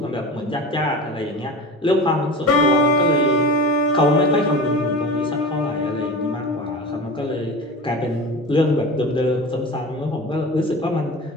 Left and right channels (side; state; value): both; normal; correlation 0.32